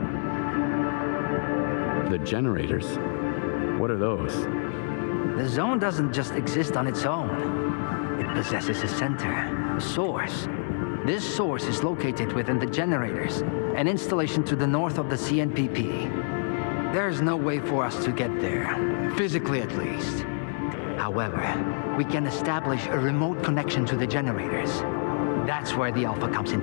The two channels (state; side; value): silent; right; 56 dB below the other